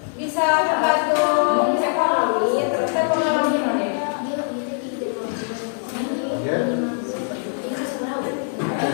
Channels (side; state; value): right; silent; 64 dB below the other